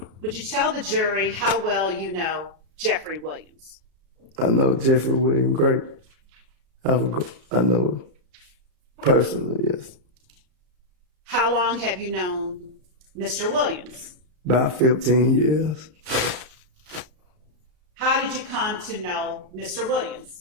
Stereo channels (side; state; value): left; late; 33 ms